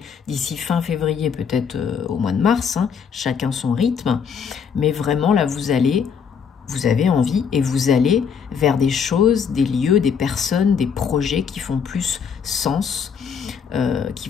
février, peut-être au mois de mars, hein, chacun son rythme. Mais vraiment, là, vous avez envie et vous allez vers des choses, des lieux, des personnes, des projets qui font plus sens, qui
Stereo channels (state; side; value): quieter; right; 6.7 dB